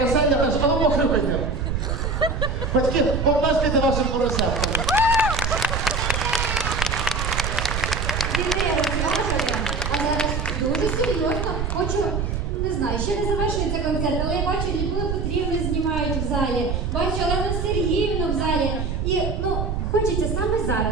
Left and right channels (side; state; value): right; noise; rumble, 1 dB below the sound